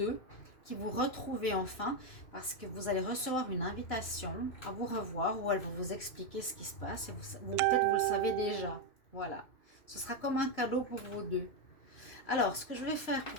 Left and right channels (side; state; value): right; late; 3.0 ms